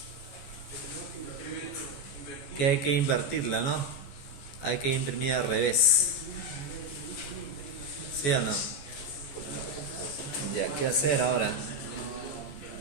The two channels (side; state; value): right; late; 14 ms